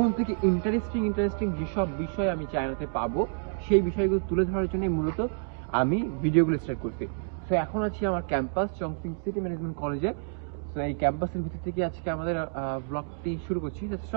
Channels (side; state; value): left; silent; digital silence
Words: থেকে ইন্টারেস্টিং যেসব বিষয় আমি চায়নাতে পাবো সেই বিষয়গুলো তুলে ধরার জন্য মূলত আমি ভিডিওগুলো স্টার্ট করছি। তো এখন আছি আমার ক্যাম্পাস চংচিং সিটি ম্যানেজমেন্ট কলেজে। তো এই ক্যাম্পাসের ভিতর থেকে আজকে আমাদের ব্লগটি শুরু করছি,